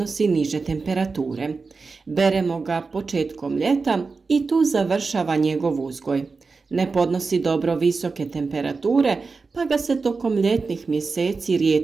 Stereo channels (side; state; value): left; quieter; 4.4 dB